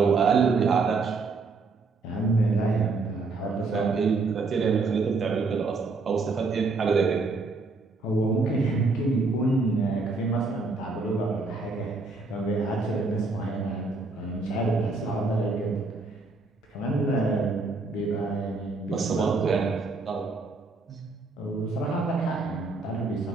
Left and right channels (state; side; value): quieter; left; 3.9 dB